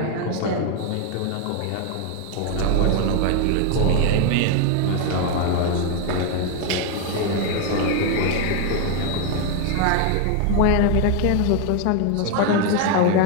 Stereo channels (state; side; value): different; both; correlation 0.01